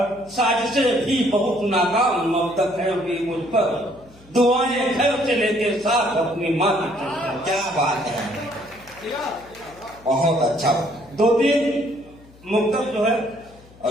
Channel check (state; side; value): noise; left; hum, 25 dB below the sound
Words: साजिशें भी बहुत नाकाम मबदक है अभी मुझ पर, दुआएं घर से लेके साथ अपनी माँ की। क्या बात है, बहुत अच्छा। दो तीन मुक्तक जो है